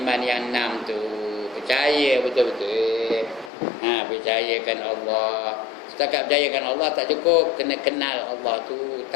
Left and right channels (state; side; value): drops out; right; at 3.5 s